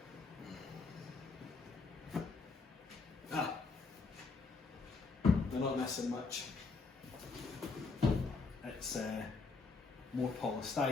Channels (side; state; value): right; quieter; 4.1 dB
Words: They're not missing much. It's more